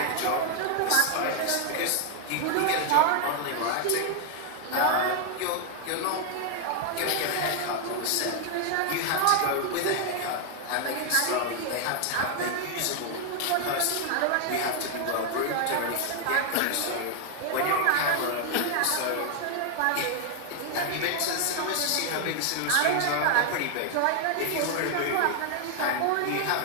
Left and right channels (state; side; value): different; both; correlation 0.00